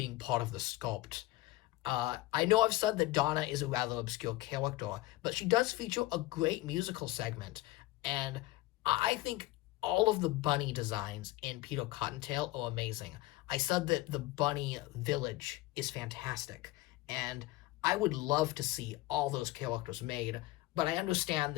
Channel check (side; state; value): right; quieter; 18.2 dB